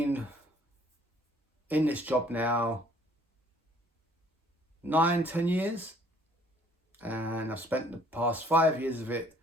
in this job now 9-10 years, and I've spent the past 5 years of it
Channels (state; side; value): normal; both; correlation 0.58